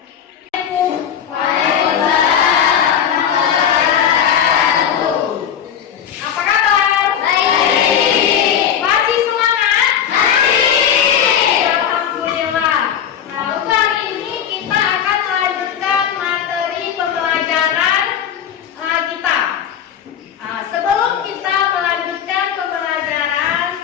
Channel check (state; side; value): quieter; right; 8.8 dB